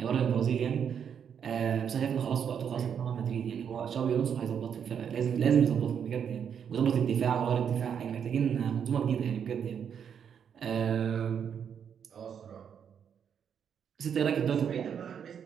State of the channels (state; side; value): quieter; left; 7.8 dB